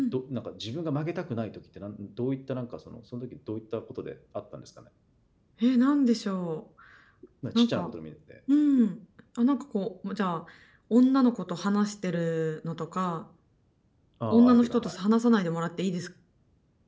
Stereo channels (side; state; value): both; identical; correlation 1.00